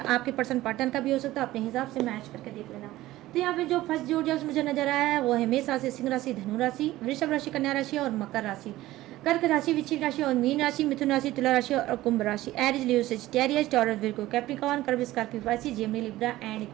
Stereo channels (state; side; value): quieter; left; 16.4 dB